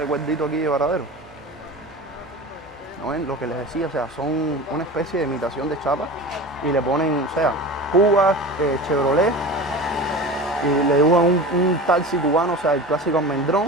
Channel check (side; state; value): both; normal; correlation 0.33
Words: aquí de Varadero. ¿No ven? Lo que les decía, o sea, son una especie de imitación de chapa y le ponen, o sea, Cuba, Chevrolet, y le dibujan un taxi cubano, o sea, el clásico